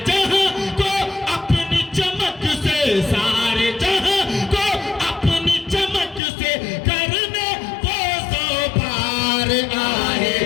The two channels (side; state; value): right; drops out; at 6.2 s